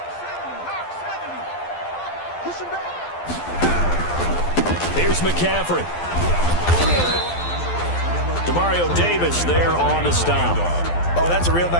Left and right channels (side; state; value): right; late; 12 ms